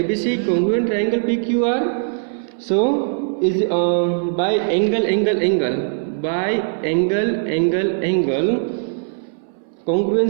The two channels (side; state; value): left; silent; 62 dB below the other